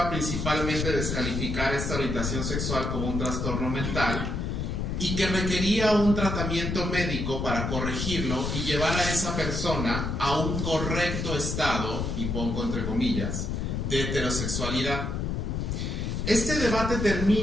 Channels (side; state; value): left; noise; rumble, 2 dB below the sound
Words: principalmente descalificar esta orientación sexual como un trastorno mental y que requería un tratamiento médico para corregirlo y llevar a esa persona a un correcto estado, y pongo entre comillas, de heterosexualidad. Este debate